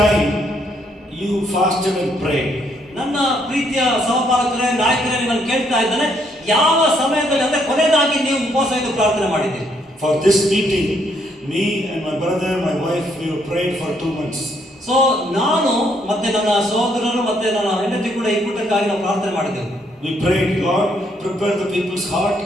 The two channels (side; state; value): both; normal; correlation 0.71